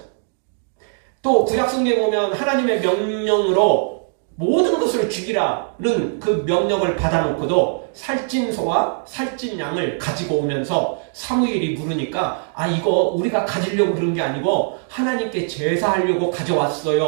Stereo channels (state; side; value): silent; left; digital silence